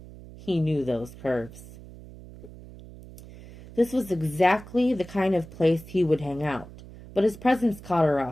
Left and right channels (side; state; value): right; noise; hum, 17 dB below the sound